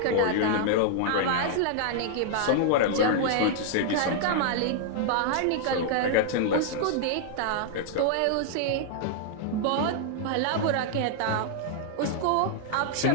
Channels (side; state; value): both; different; correlation -0.01